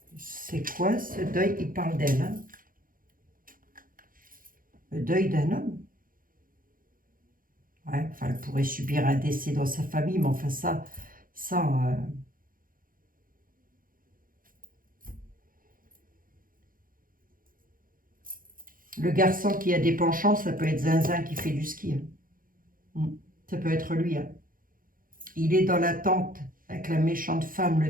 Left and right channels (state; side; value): late; left; 0.41 ms